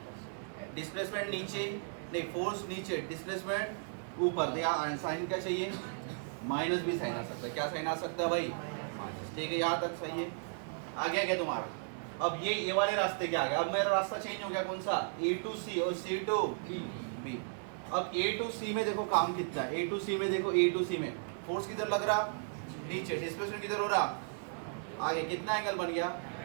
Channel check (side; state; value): left; silent; digital silence